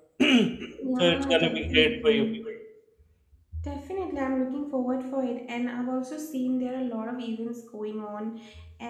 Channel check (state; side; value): identical; both; correlation 1.00